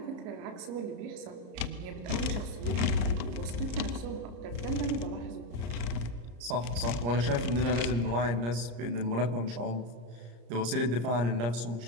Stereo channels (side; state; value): left; late; 34 ms